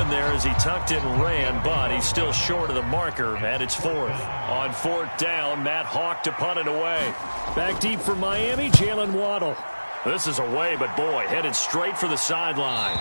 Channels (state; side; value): inverted; both; correlation -1.00